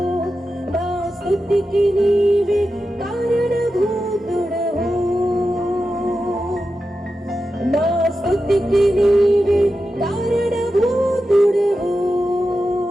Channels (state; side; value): normal; both; correlation 0.91